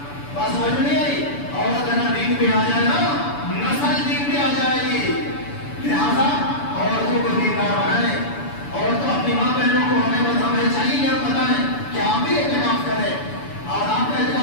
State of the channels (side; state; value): right; late; 6.9 ms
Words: بات سمجھ نہیں آئی. عورت نا دین پہ آ جائے نا, نسل دین پہ آ جائے گی. لہذا عورتوں کو دیندار بنائیں, اور تو اپنی ماں بہنوں کو ہمیں چاہیے کہ آپ بتائیں کہ آپ بھی اعتکاف کریں. اور آپ کا